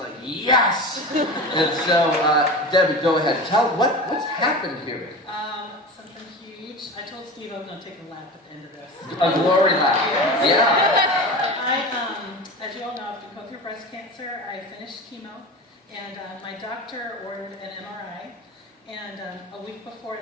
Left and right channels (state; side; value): normal; both; correlation 0.31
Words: yes! And so, Debbie, go ahead. Tell what's happened here. Something huge. I told Steve I was going to take a lap at the end of this. A glory lap. Yeah. As you all know, I've been going through breast cancer. I finished chemo, and my doctor ordered an MRI. And a week before